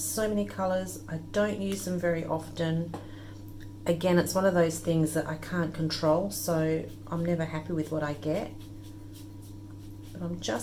many colors. I don't use them very often. Again, it's one of those things that I can't control, so I'm never happy with what I get. But I'm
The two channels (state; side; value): identical; both; correlation 1.00